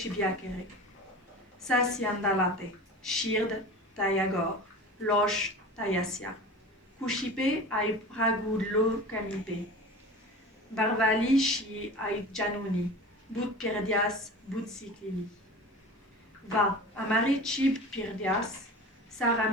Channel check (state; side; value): normal; both; correlation 0.35